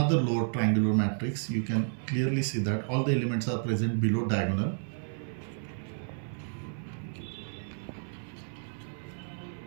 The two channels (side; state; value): left; silent; 57 dB below the other